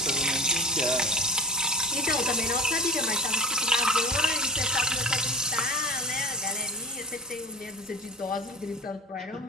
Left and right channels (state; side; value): normal; both; correlation 0.33